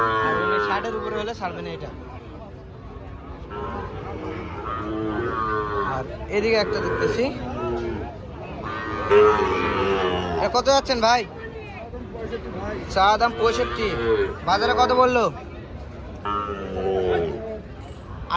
আর 60-এর উপরে হলে ছাড়বেন এটা। আর এদিকে একটা দেখতেছি, কত যাচ্ছেন ভাই? চা দাম 65। বাজারে কত বললো?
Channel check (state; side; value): identical; both; correlation 1.00